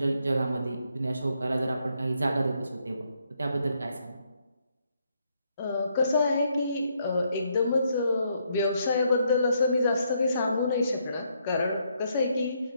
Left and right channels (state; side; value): inverted; both; correlation -0.74